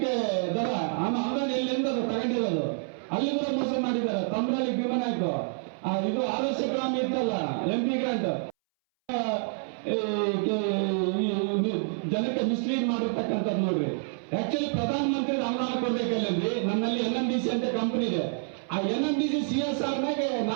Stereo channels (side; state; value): left; silent; 59 dB below the other